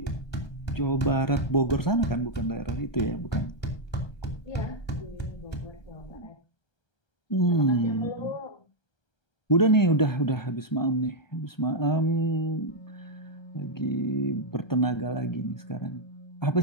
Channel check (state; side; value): late; right; 1.3 ms